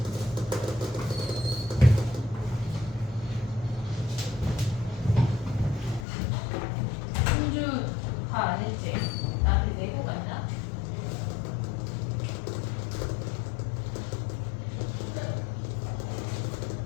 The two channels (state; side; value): drops out; right; at 6.1 s